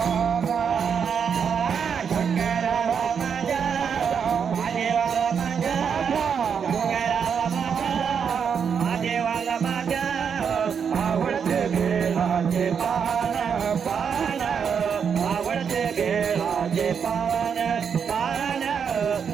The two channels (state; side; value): quieter; left; 7.0 dB